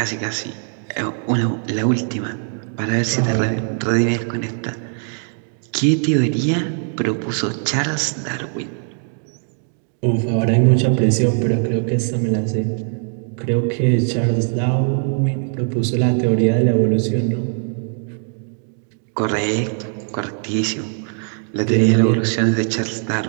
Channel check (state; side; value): silent; left; 56 dB below the other